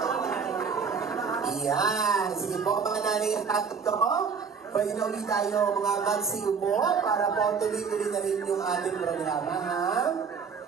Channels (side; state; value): left; quieter; 5.9 dB